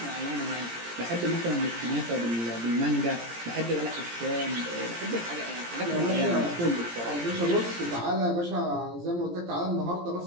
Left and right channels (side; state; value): left; late; 17 ms